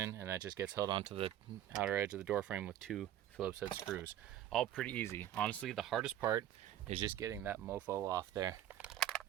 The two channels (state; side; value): quieter; left; 11.7 dB